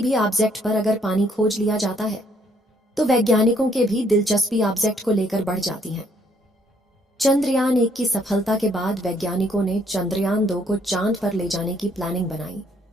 भी ऑब्जेक्ट पर अगर पानी खोज लिया जाता है तो वैज्ञानिकों के भी दिलचस्पी ऑब्जेक्ट को लेकर बढ़ जाती है। चंद्रयान-1 की सफलता के बाद वैज्ञानिकों ने चंद्रयान-2 को चांद पर ले जाने की प्लानिंग बनाई,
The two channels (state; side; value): normal; both; correlation 0.67